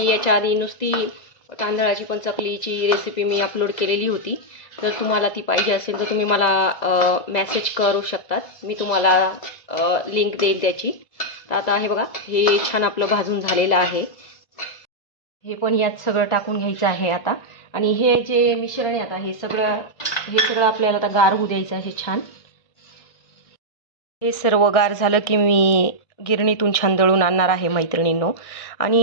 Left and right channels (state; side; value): late; right; 2.0 ms